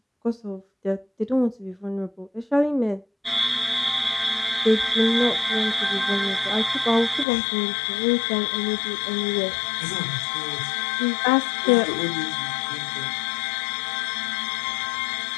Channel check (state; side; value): drops out; right; at 7.2 s